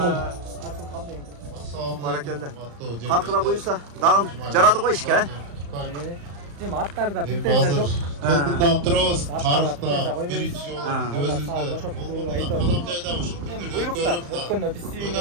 Баракелде. Каркыда буюрса дагы жарады го ишке. Эми аттарда типтеже жок. Толкундан турабыз, тарыхта биринчи жолу өзүбүздө кадам жайда ушул Буйруктар өткөндө биз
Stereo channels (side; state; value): left; late; 35 ms